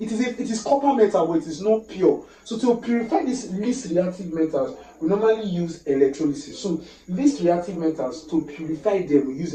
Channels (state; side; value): identical; both; correlation 1.00